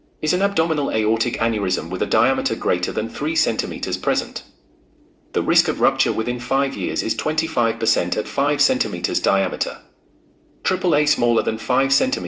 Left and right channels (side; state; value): both; identical; correlation 1.00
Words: an abdominal aortic aneurysm with a diameter greater than 3 cm present? The risk of rupture within 5 years is 25% at 5 cm diameter. AAA smaller than 5